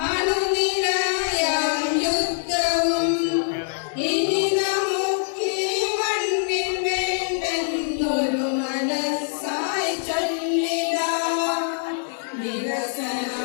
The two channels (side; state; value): right; silent; digital silence